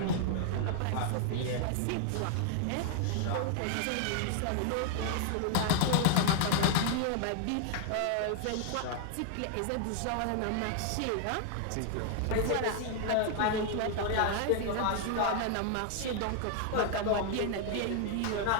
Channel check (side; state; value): both; different; correlation 0.00